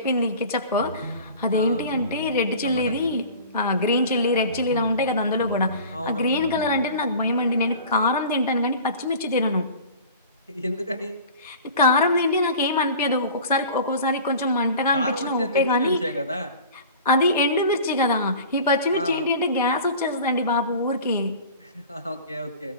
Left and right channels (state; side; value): inverted; both; correlation -0.41